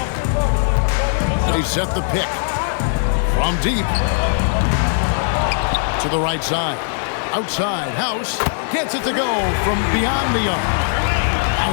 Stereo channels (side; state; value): right; silent; 63 dB below the other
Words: They set the pick. From deep. To the right side. Outside. House gets it to go from beyond the arc.